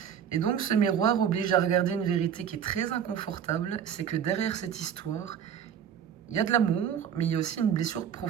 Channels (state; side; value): quieter; left; 8.4 dB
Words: Et donc ce miroir oblige à regarder une vérité qui est très inconfortable, c'est que derrière cette histoire, il y a de l'amour, mais il y a aussi une blessure